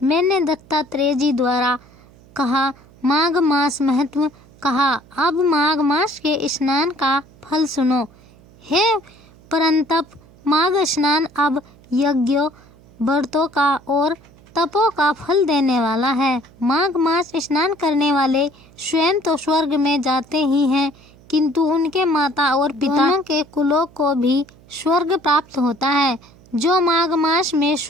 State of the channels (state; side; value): noise; right; hum, 26 dB below the sound